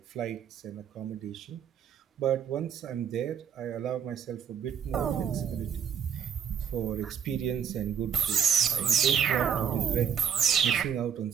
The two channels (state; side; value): quieter; left; 8.0 dB